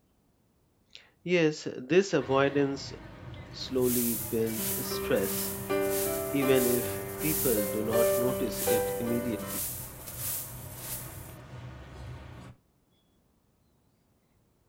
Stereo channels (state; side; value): identical; both; correlation 1.00